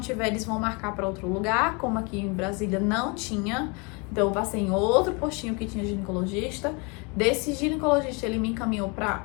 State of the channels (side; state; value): right; quieter; 30.9 dB